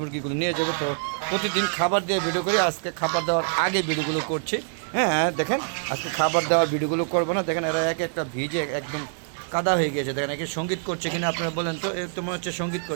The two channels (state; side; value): silent; left; digital silence